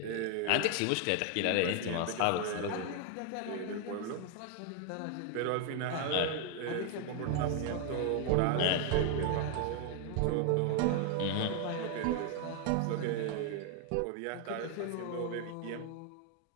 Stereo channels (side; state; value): both; different; correlation 0.00